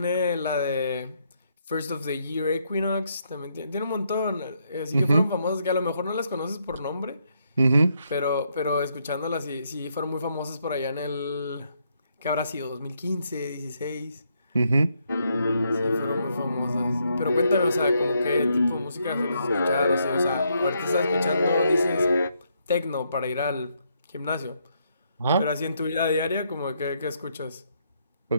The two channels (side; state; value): both; inverted; correlation -0.76